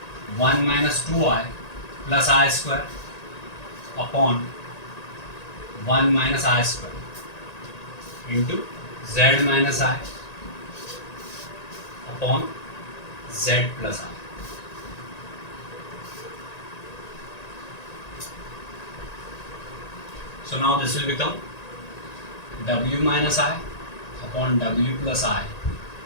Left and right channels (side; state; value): right; late; 1.9 ms